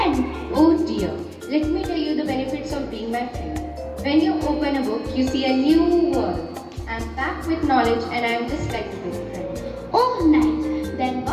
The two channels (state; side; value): identical; both; correlation 1.00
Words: Oh dear. Let me tell you the benefits of being my friend. When you open a book, you see a new world. I am packed with knowledge and I am just like a good friend. Oh, nice. Then